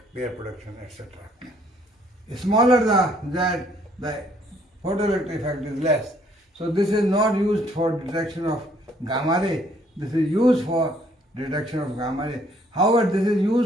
pair production, etc. Smaller the Z, the photoelectric effect is less. So this is not used for detection of gamma ray. This is used for detection of gamma ray. However, this is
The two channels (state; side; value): normal; both; correlation 0.64